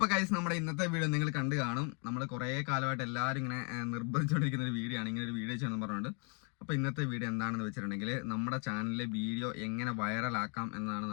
ഗൈസ്, നമ്മുടെ ഇന്നത്തെ വീഡിയോ നിങ്ങൾ കണ്ടു കാണും. നമ്മൾ കുറേ കാലമായിട്ട് എല്ലാവരും ഇങ്ങനെ നിർബന്ധിച്ചുകൊണ്ടിരിക്കുന്ന ഒരു വീഡിയോ ആണ്, ഇങ്ങനെ ഒരു വീഡിയോ ചെയ്യണമെന്ന് പറഞ്ഞുകൊണ്ട്. അപ്പോൾ ഇന്നത്തെ വീഡിയോ എന്താണെന്ന് വെച്ചിട്ടുണ്ടെങ്കിൽ നമ്മുടെ ചാനലിലെ വീഡിയോ എങ്ങനെ വൈറലാക്കാം എന്നതാണ്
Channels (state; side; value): quieter; right; 37.7 dB